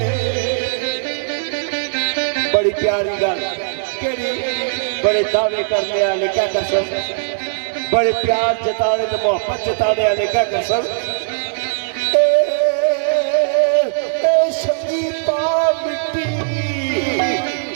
गल केड़ी बड़े दावे करने वाले क्या कर सन बड़े प्यार जताने तो मोहब्बत जताने वाले क्या कर सन संगीता मिट्टी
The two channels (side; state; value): left; silent; 62 dB below the other